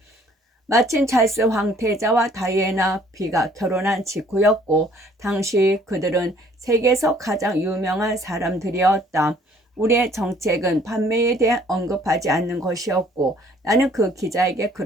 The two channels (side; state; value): both; normal; correlation 0.58